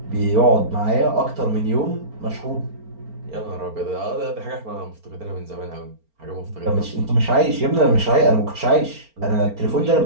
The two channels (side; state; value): left; late; 4.4 ms